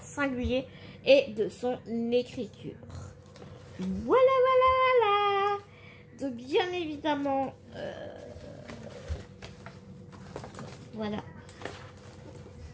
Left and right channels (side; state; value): both; identical; correlation 1.00